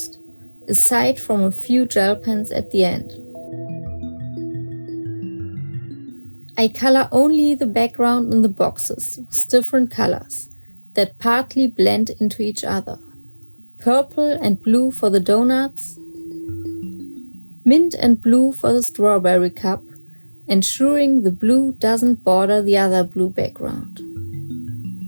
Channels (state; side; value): inverted; both; correlation -1.00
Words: aside from a few gel pens at the end. I color only the background in the boxes with different colors that partly blend into each other. Purple and blue for the donuts, mint and blue for the strawberry cup, ensuring the blue doesn't border the other blue background.